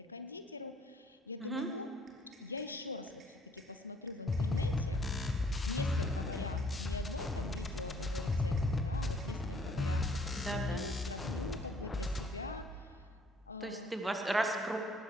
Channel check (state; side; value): normal; both; correlation 0.60